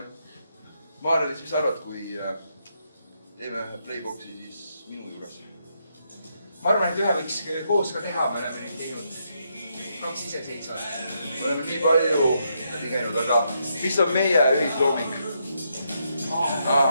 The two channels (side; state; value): both; inverted; correlation -0.79